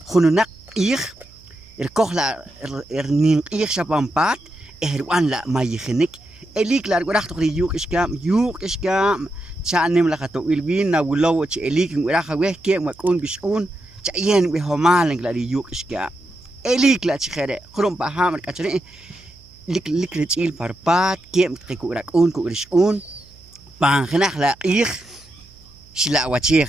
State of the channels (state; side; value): noise; right; hum, 25 dB below the sound